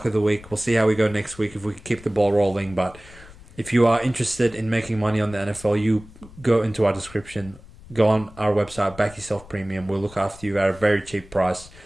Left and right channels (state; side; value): noise; left; rumble, 20 dB below the sound